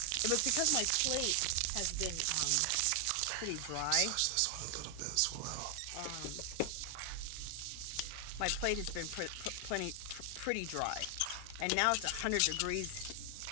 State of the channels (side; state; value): both; different; correlation 0.00